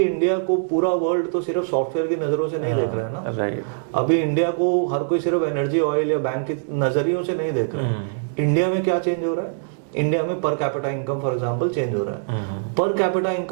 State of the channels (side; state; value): left; silent; 63 dB below the other